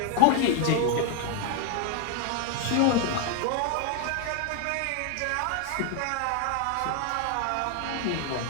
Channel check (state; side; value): different; both; correlation 0.01